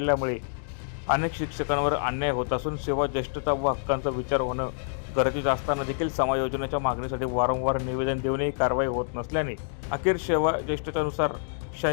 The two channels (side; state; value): right; silent; digital silence